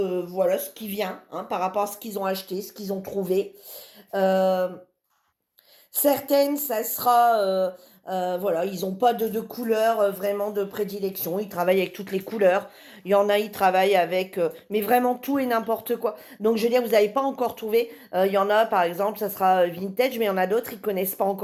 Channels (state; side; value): identical; both; correlation 1.00